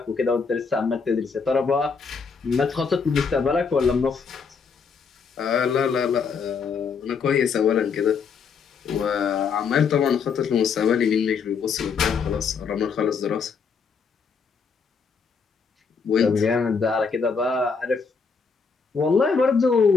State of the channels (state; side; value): quieter; right; 5.6 dB